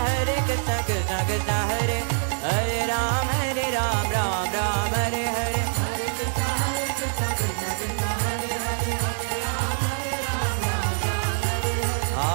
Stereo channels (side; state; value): left; silent; 62 dB below the other